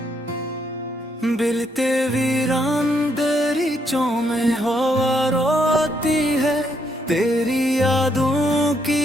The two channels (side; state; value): both; normal; correlation 0.74